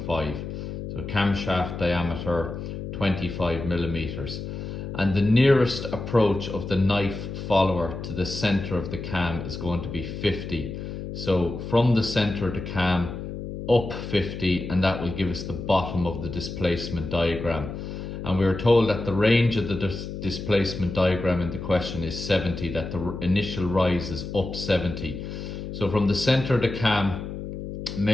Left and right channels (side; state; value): left; noise; hum, 7 dB below the sound